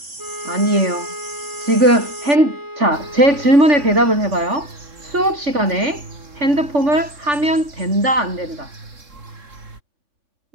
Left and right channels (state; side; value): late; left; 3.6 ms